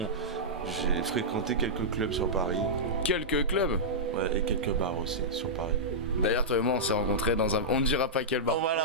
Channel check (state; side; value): normal; both; correlation -0.12